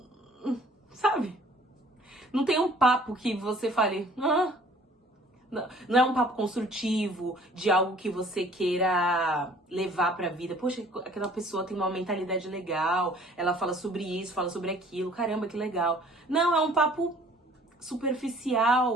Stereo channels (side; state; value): both; normal; correlation 0.54